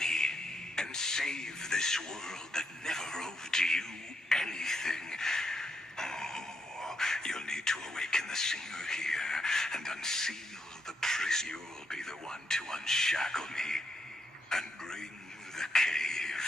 and save this world that never owed you anything. Oh, you'll need to awaken the singer here and unseal the prison. You'll be the one to unshackle me and bring the cave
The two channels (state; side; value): normal; both; correlation 0.79